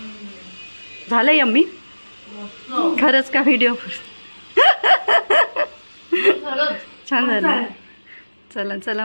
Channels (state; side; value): inverted; both; correlation -1.00